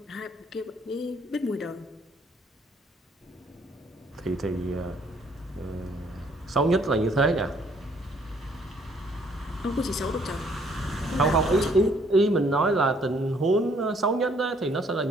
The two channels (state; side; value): normal; both; correlation 0.64